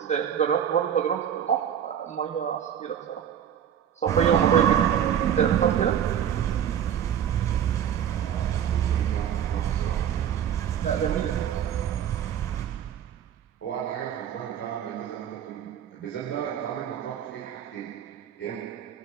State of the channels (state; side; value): quieter; left; 9.3 dB